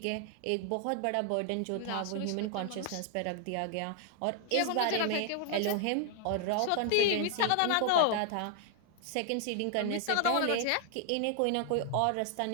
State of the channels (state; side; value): different; both; correlation 0.00